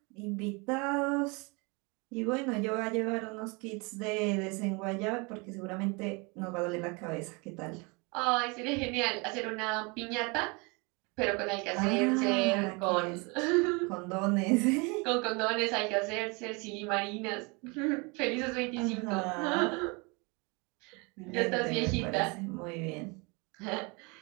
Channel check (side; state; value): left; quieter; 29.3 dB